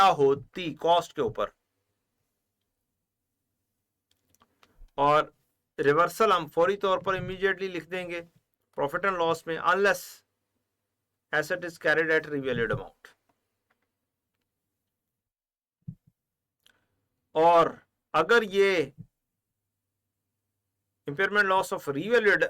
होती कॉस्ट के ऊपर। और रिवर्सल हम फौरी तौर पर इमीडिएटली लिख देंगे प्रॉफिट एंड लॉस में, unless asset is carried at revalued amount. और अगर ये impairment loss of revalued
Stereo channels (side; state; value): both; identical; correlation 1.00